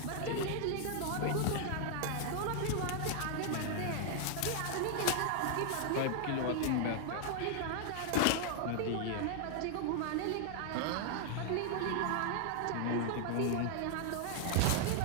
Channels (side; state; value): both; different; correlation 0.00